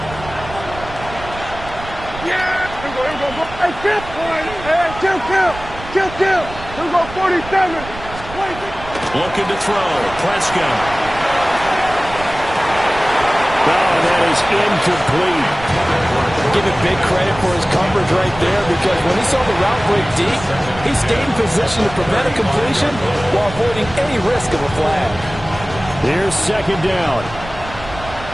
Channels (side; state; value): right; noise; rumble, 14 dB below the sound